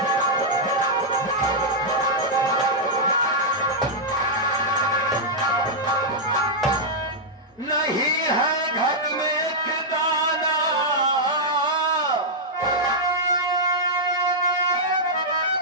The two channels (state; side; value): normal; both; correlation -0.06